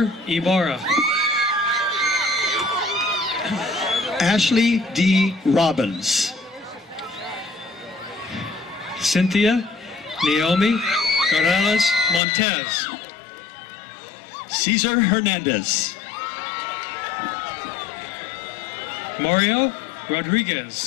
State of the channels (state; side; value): drops out; right; at 12.2 s